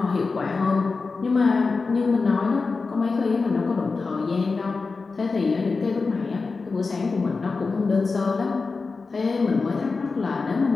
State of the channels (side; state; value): right; quieter; 4.2 dB